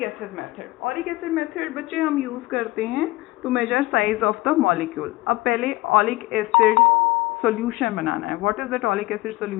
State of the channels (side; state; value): right; quieter; 20.0 dB